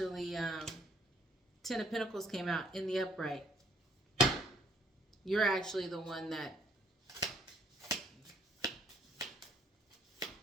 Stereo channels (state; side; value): normal; both; correlation 0.64